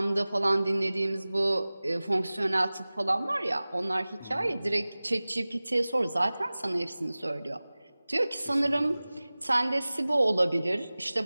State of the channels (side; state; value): both; inverted; correlation -0.98